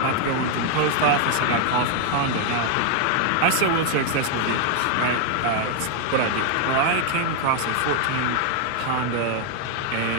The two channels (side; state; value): both; different; correlation 0.00